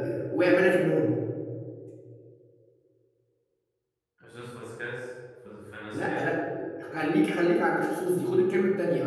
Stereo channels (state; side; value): identical; both; correlation 1.00